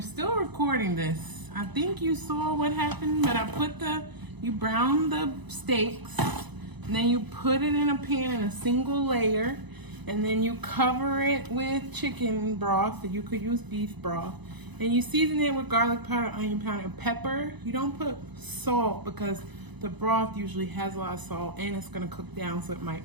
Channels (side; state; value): left; late; 1.0 ms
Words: still recording this. I think you saw what happened, but you brown the steaks, and then you put it in a pan in a single layer, and then you cover it with chicken broth, or you could use beef broth, and you season it with garlic powder, onion powder, and pepper. You don't put salt because the broth usually has a lot of salt and it's gonna cook down, so it might